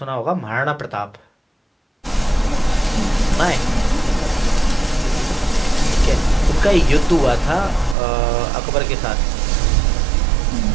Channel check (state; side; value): drops out; left; at 8.0 s